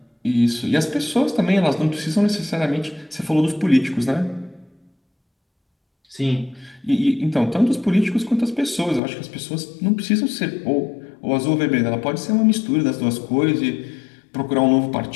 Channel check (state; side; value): drops out; right; at 9.0 s